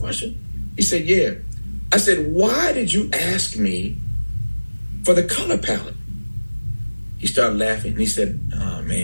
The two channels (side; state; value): both; inverted; correlation -1.00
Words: He said, yeah. I said, why did you ask me for the color palette? He started laughing, and he said, oh,